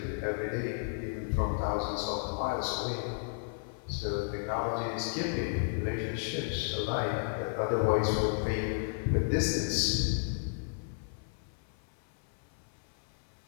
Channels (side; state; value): right; silent; 56 dB below the other